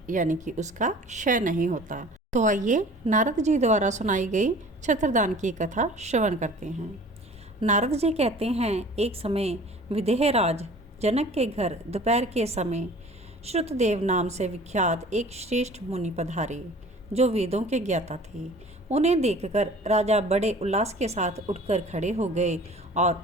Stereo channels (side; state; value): both; normal; correlation 0.46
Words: यानी कि उसका क्षय नहीं होता। तो आइए नारद जी द्वारा सुनाई गई छत्रदान की कथा श्रवण करते हैं। नारद जी कहते हैं, एक समय विदेहराज जनक के घर दोपहर के समय श्रुतदेव नाम से विख्यात एक श्रेष्ठ मुनि पधारे, जो वेदों के ज्ञाता थे। उन्हें देखकर राजा बड़े उल्लास के साथ उठकर खड़े हो गए